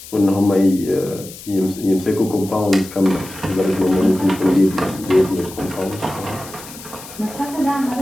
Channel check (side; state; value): left; noise; hiss, 16 dB below the sound